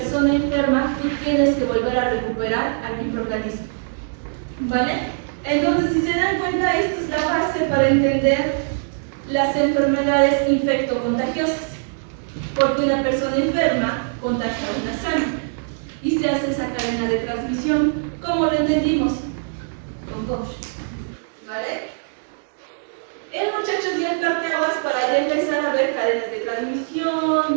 enferma, tú tienes que volver a recuperar al microorganismo. ¿Vale? Entonces, si se dan cuenta, esta es la base para entender las enfermedades infectocontagiosas, porque una persona enferma contagia a una sana y se hace esa cadena de transmisión, como lo entendimos con Koch, ¿vale? El muchacho dio el parteaguas para ya empezar a ver cadenas de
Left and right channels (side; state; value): left; silent; digital silence